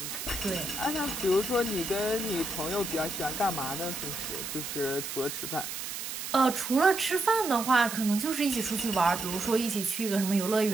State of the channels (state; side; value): noise; right; hiss, 6 dB below the sound